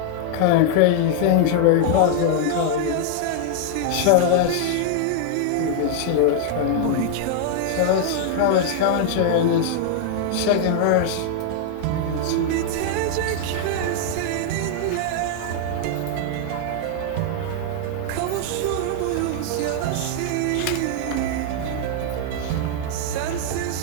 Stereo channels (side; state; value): both; different; correlation -0.01